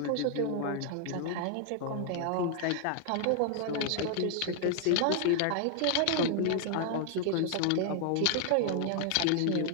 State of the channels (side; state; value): both; different; correlation 0.00